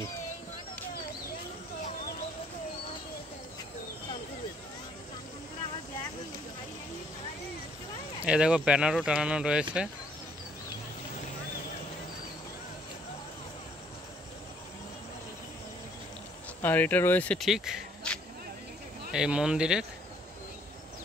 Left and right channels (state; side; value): normal; both; correlation 0.64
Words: এই দেখো, ব্যানারও টানানো রয়েছে। আর এটা রয়েছে ঠিক এই মন্দিরের